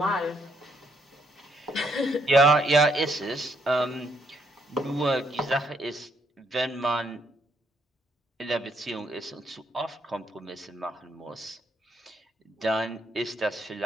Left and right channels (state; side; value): normal; both; correlation 0.73